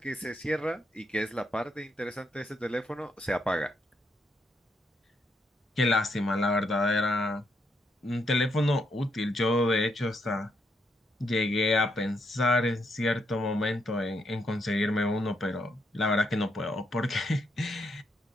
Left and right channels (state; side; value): normal; both; correlation 0.77